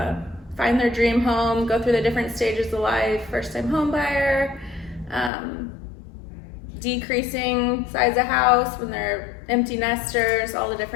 find their dream home, go through the different stages of life, first-time home buyer, decreasing size of house when they're empty nesters, all the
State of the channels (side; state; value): right; drops out; at 5.3 s